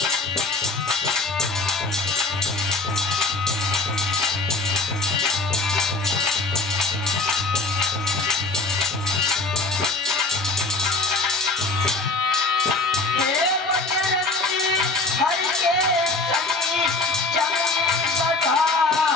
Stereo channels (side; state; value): right; quieter; 3.4 dB